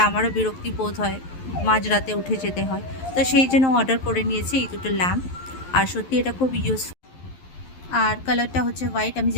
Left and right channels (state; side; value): late; right; 11 ms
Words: আমারও বিরক্তি বোধ হয়, মাঝরাতে উঠে যেতে হয়। তো সেই জন্য অর্ডার করে নিয়েছি এই দুটো ল্যাম্প। আর সত্যি এটা খুব ইউজফুল। আর কালারটা হচ্ছে হোয়াইট, আমি